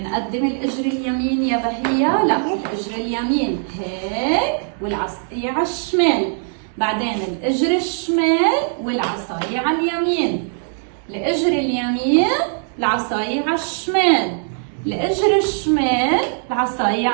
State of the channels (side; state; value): left; silent; 66 dB below the other